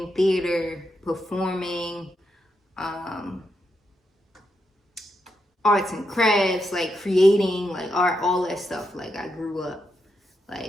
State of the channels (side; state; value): both; normal; correlation 0.83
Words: theater, performing, arts and crafts, like creating, like art, all that stuff. Like I grew up